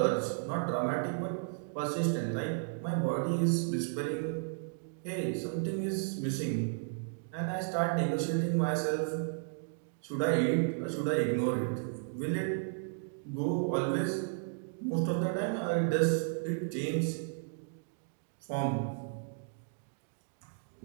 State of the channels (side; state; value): left; silent; digital silence